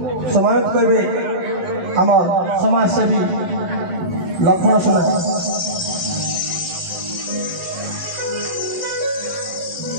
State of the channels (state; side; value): late; left; 11 ms